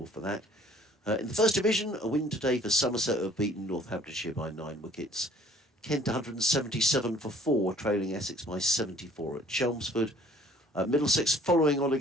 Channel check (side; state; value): both; normal; correlation 0.56